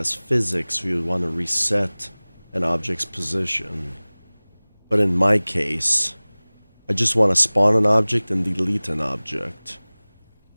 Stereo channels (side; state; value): both; inverted; correlation -1.00